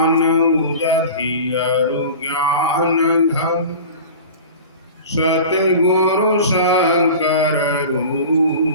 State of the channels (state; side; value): inverted; both; correlation -0.36